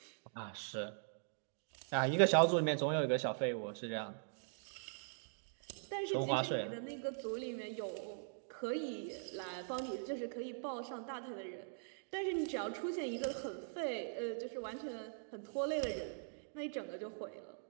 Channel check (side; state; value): left; silent; digital silence